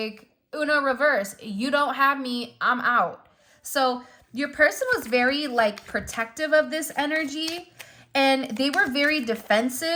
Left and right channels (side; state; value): both; identical; correlation 1.00